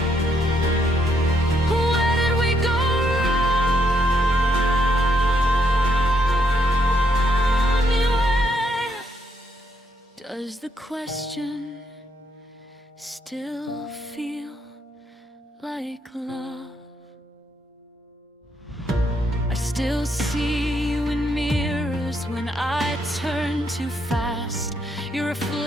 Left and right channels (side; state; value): both; normal; correlation 0.74